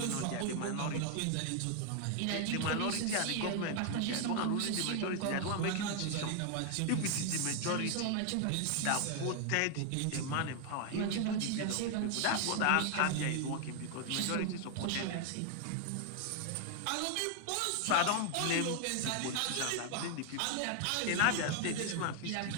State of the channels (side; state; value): both; different; correlation 0.00